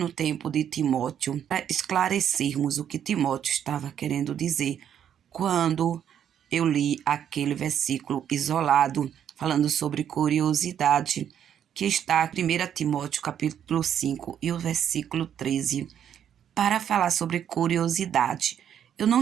tempo de Timóteo, para esclarecermos o que Timóteo estava querendo dizer quando eu li aquele versículo isolado falando sobre curiosidade, que está em 1 Timóteo capítulo 5 e o versículo 13, para falar sobre curiosidade. Eu não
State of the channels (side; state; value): left; quieter; 9.3 dB